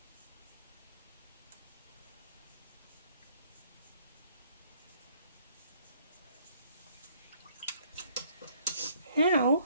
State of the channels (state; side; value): inverted; both; correlation -0.62